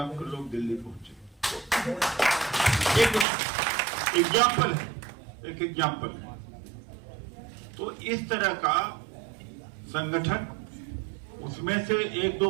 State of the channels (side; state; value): left; drops out; at 3.2 s